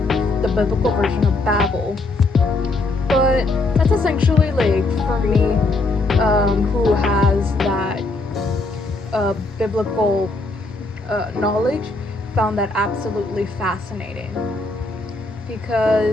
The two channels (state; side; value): quieter; right; 3.2 dB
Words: the biblical version of Babel, but that's essentially, like, for me, who has that biblical knowledge, found that absolutely fascinating,